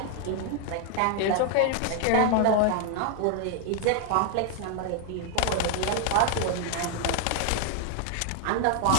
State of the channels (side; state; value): both; different; correlation 0.00